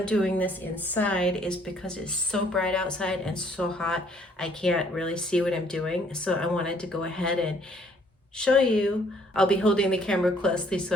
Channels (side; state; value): both; normal; correlation 0.63